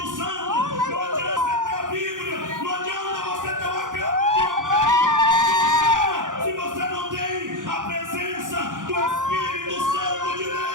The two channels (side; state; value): left; late; 0.88 ms